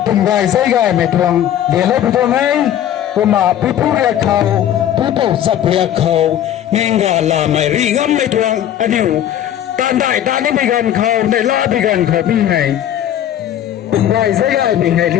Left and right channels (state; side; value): quieter; right; 11.0 dB